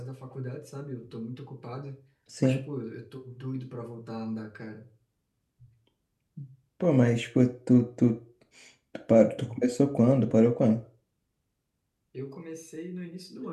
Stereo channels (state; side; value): identical; both; correlation 1.00